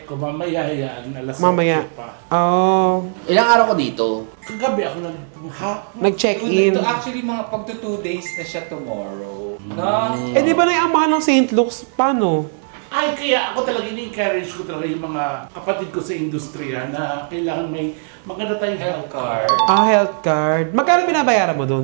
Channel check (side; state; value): left; silent; 67 dB below the other